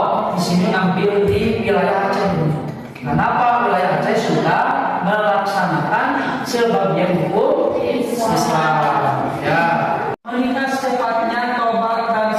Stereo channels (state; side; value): identical; both; correlation 1.00